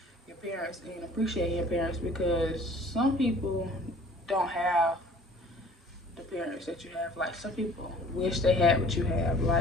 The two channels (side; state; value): both; normal; correlation 0.50